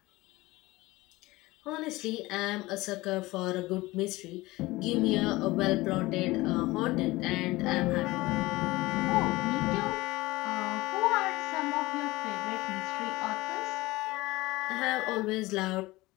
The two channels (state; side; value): quieter; right; 20.0 dB